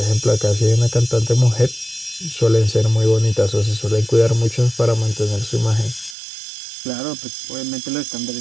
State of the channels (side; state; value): left; drops out; at 6.2 s